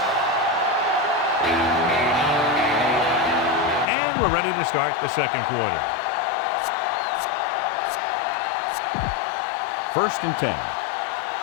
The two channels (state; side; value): drops out; right; at 3.9 s